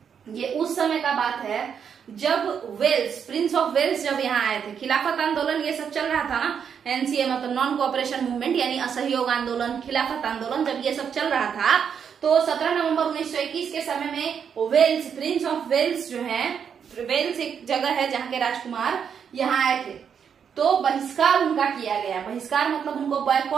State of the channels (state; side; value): quieter; left; 7.4 dB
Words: ये उस समय का बात है जब वेल्स, प्रिंस ऑफ वेल्स जब यहाँ आए थे। खिलाफत आंदोलन ये सब चल रहा था ना, एनसीए मतलब नॉन कोऑपरेशन मूवमेंट यानी असहयोग आंदोलन, खिलाफत आंदोलन जब ये सब चल रहा था, तो 17 नवंबर 1921 के समय में वेल्स, प्रिंस ऑफ वेल्स जो है, वेल्स एक जगह है जहाँ के राजकुमार यहाँ आए थे। तो बहिष्कार उनका किया गया। बहिष्कार मतलब उनको